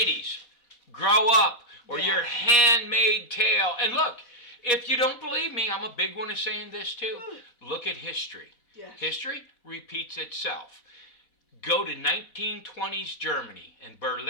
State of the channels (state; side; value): late; right; 4.2 ms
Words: grow up, or your handmaid tale. And look, if you don't believe me, I'm a big one of saying this too. Look at history. Yes. History repeats itself. Go to 1920s Germany and